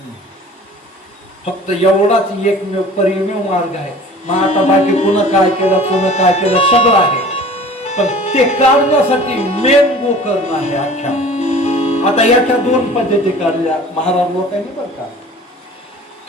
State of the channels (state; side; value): normal; both; correlation 0.45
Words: फक्त एवढाच एकमेव परिमेव मार्ग आहे. मग आता बाकी पुन्हा काय केलं सगळं आहे. पण ते काढण्यासाठी मेन गोकर्ण आहे अख्ख्या. आता याच्या दोन पद्धती काढल्या महाराज लोकांनी बरं का.